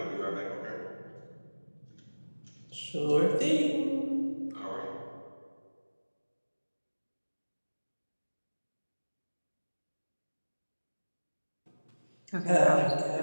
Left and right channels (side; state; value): both; inverted; correlation -1.00